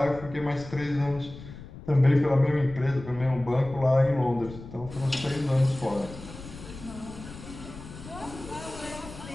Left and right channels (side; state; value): left; noise; rumble, 14 dB below the sound